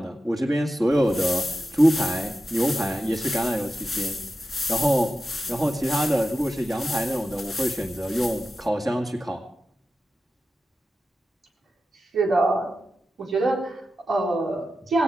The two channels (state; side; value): normal; both; correlation 0.92